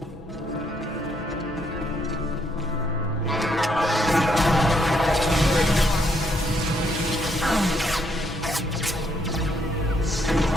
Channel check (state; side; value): normal; both; correlation 0.73